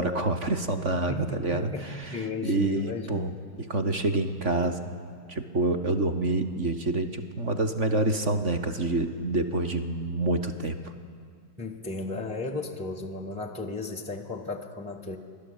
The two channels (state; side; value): late; left; 3.5 ms